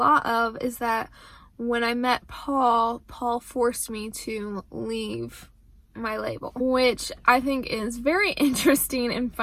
of is that when I met Paul forced me to leave my label, which I think is very interesting and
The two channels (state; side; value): identical; both; correlation 1.00